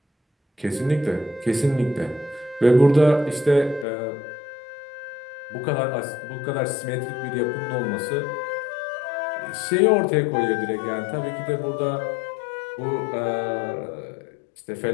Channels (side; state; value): right; drops out; at 3.9 s